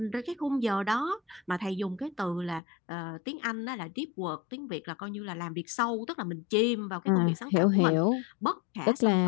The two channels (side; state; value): right; drops out; at 2.6 s